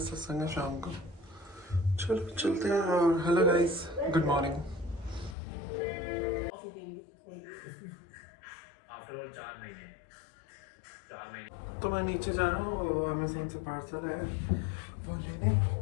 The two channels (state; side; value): drops out; right; at 5.4 s